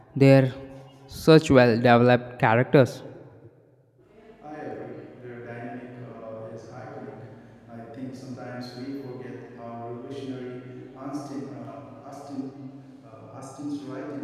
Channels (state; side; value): identical; both; correlation 1.00